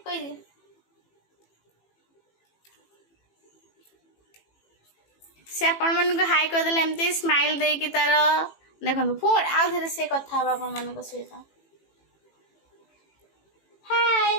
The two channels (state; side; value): late; right; 18 ms